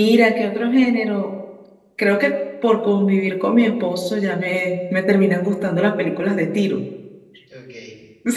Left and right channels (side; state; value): both; identical; correlation 1.00